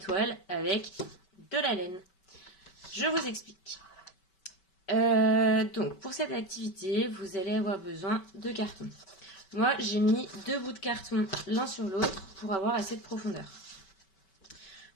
avec de la laine. Je vous explique. Donc, pour cette activité, vous allez avoir besoin de carton. Moi, j'ai mis 2 bouts de carton l'un sur l'autre pour avoir assez de profondeur.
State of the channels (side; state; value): right; late; 5.2 ms